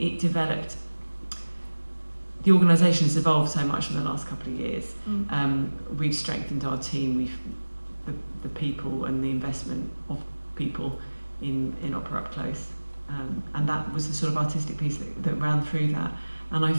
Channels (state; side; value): inverted; both; correlation -1.00